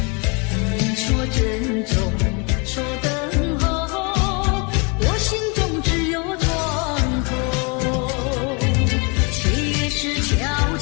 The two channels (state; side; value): quieter; right; 32.0 dB